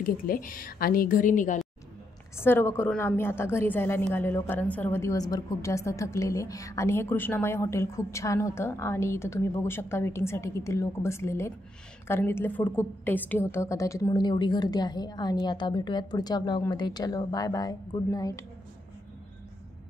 घेतले आणि घरी निघालो. सर्व करून आम्ही आता घरी जायला निघालेलो कारण सर्व दिवसभर खूप जास्त थकलेले. आणि हे कृष्णामाई हॉटेल खूप छान होतं आणि इथं तुम्ही बघू शकता वेटिंगसाठी किती लोक बसलेले आहेत कारण इथले फूड खूप टेस्टी होतं कदाचित म्हणून एवढी गर्दी आहे. आणि आता भेटूयात पुढच्या व्लॉगमध्ये. चलो बाय बाय, गुड नाईट.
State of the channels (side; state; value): both; normal; correlation 0.80